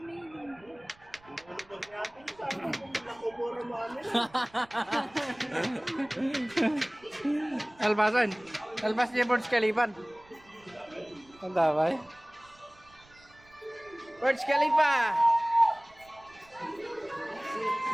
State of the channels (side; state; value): right; noise; rumble, 28 dB below the sound